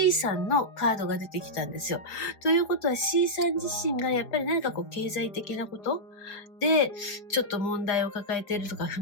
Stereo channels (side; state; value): right; late; 5.0 ms